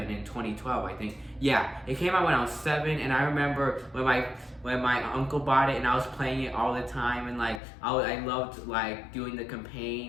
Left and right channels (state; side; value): drops out; right; at 7.6 s